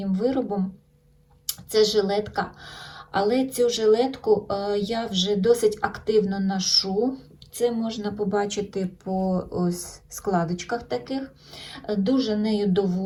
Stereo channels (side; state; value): both; identical; correlation 1.00